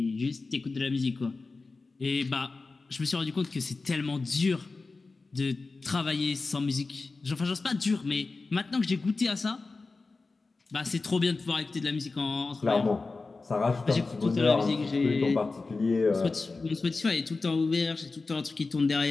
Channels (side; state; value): right; quieter; 3.8 dB